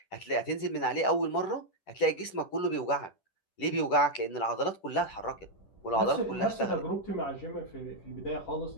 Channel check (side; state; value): right; late; 10 ms